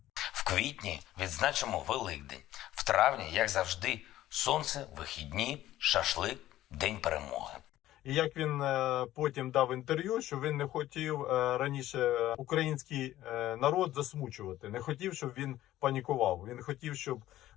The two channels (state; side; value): quieter; right; 14.3 dB